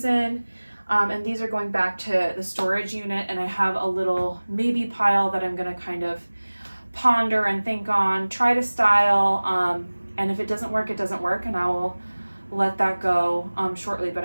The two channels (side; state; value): both; inverted; correlation -1.00